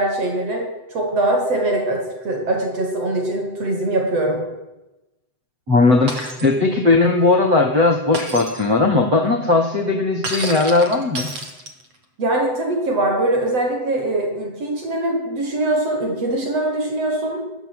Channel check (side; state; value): left; late; 7.9 ms